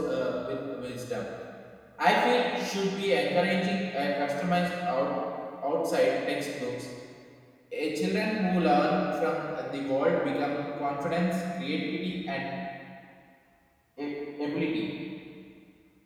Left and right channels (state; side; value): identical; both; correlation 1.00